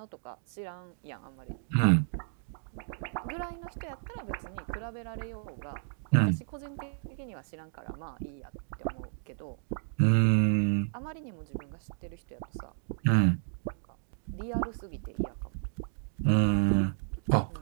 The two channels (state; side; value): silent; left; digital silence